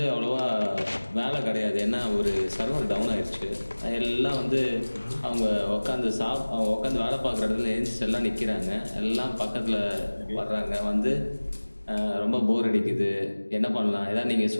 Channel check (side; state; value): both; inverted; correlation -1.00